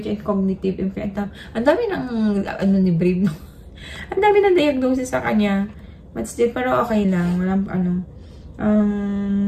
and cognitive impairment. Ang dami ng, ni Brave, no? Ang dami ng diagnosis sa kanya. But still, pero okay lang. Walang,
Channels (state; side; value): identical; both; correlation 1.00